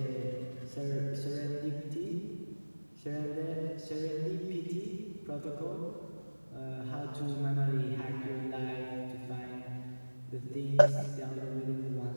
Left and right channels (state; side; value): inverted; both; correlation -1.00